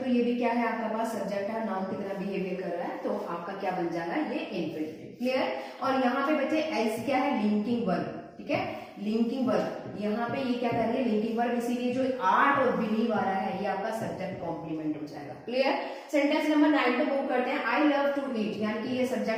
ये भी क्या है आपका पास? सब्जेक्ट है, नाउन की तरह बिहेवियर कर रहा है, तो आपका क्या बन जाएगा? ये इन्फिनिटिव। क्लियर? और यहाँ पे बच्चे एल्स क्या है? Linking verb. ठीक है, लिंकिंग वर्ब। यहाँ पे ये क्या कर रही है? Linking verb. इसीलिए जो आर्ट और बिलीव आ रहा है ये आपका सब्जेक्ट कॉम्प्लीमेंट हो जाएगा। क्लियर? सेंटेंस नंबर 9 पे मूव करते हैं। आई लव टू ईट, यानी कि ये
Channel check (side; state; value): both; identical; correlation 1.00